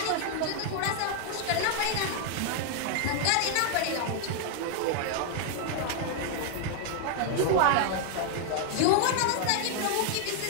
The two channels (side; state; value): both; different; correlation 0.00